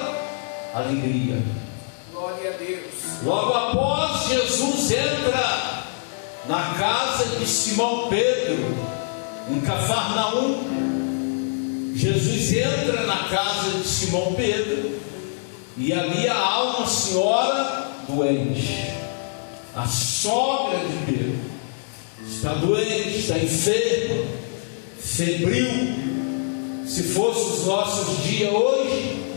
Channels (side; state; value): right; silent; digital silence